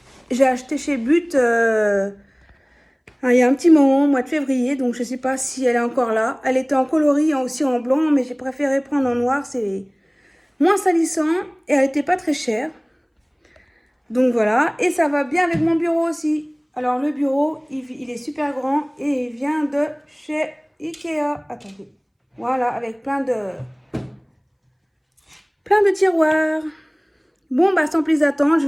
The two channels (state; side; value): identical; both; correlation 1.00